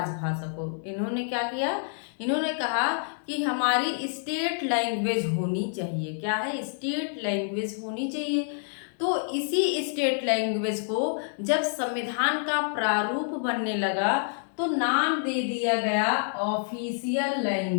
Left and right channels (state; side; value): silent; right; digital silence